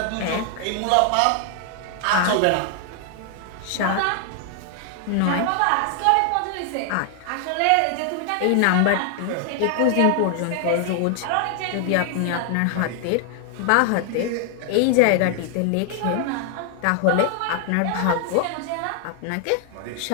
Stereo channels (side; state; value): both; different; correlation 0.00